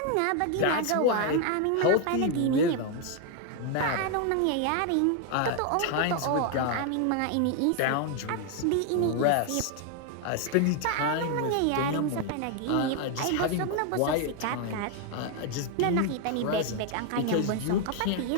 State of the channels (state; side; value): different; both; correlation 0.00